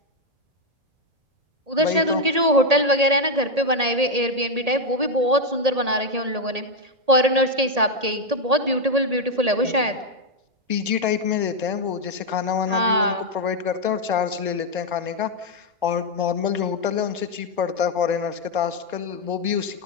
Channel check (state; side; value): late; left; 1.8 ms